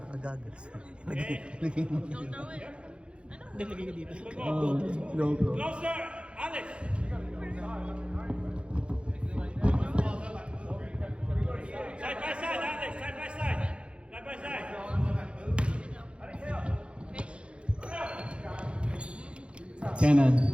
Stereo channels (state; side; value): late; left; 0.058 ms